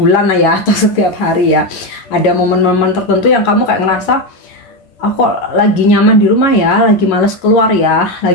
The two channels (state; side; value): late; right; 11 ms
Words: ya, atau setiap hari ya. Ada momen-momen tertentu yang kamu kayak ngerasa aku lagi nyaman di rumah ya, lagi males keluar ya,